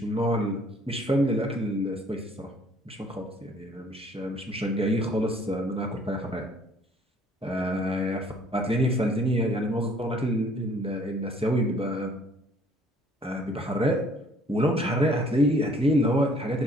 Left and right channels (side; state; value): both; normal; correlation 0.58